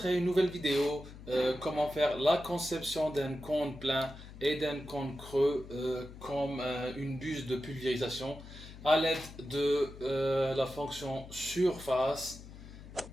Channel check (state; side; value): noise; left; hum, 15 dB below the sound